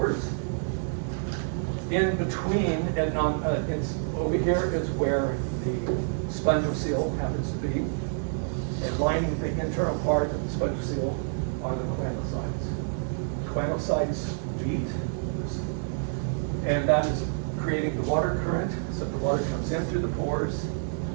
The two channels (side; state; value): left; silent; 58 dB below the other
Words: In between, and over here is where the spongiocele happens to be. And lining the internal part of the spongiocele are the melanocytes. Melanocytes beat, and that is creating the water current. So the water comes in through the pores